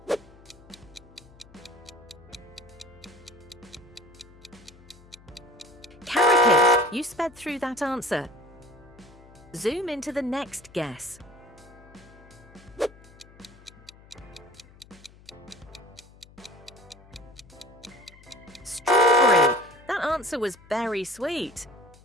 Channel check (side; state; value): left; noise; hum, 23 dB below the sound